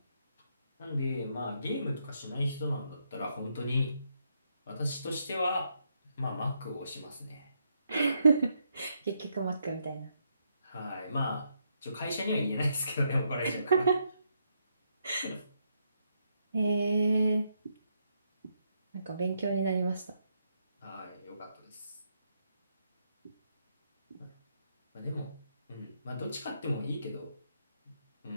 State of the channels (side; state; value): both; inverted; correlation -0.78